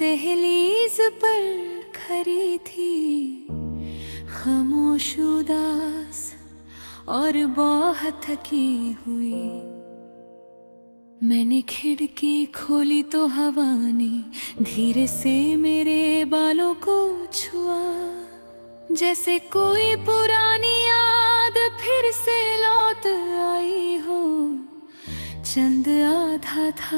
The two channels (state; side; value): inverted; both; correlation -1.00